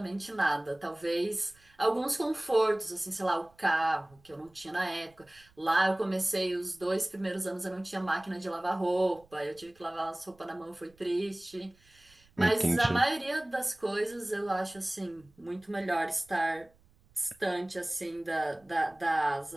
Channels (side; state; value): right; noise; rumble, 30 dB below the sound